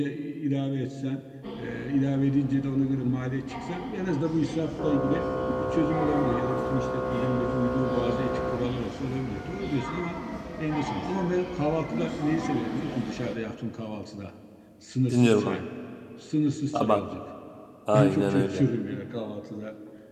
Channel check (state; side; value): identical; both; correlation 1.00